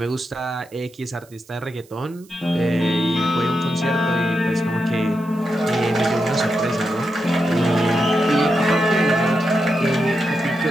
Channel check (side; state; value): right; noise; hiss, 27 dB below the sound